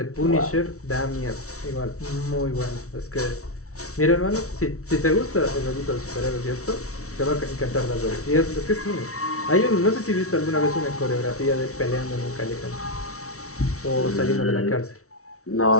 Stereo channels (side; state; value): right; late; 0.64 ms